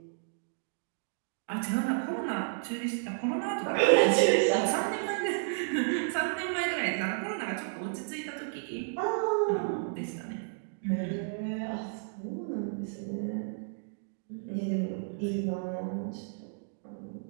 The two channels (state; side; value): silent; left; digital silence